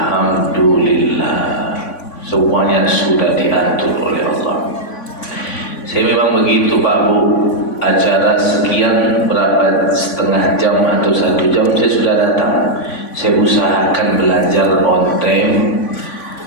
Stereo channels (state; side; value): late; right; 3.5 ms